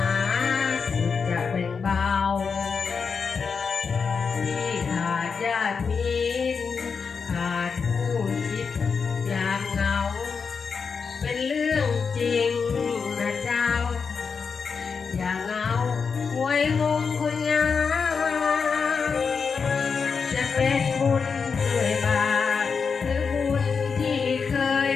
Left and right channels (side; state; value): right; quieter; 5.6 dB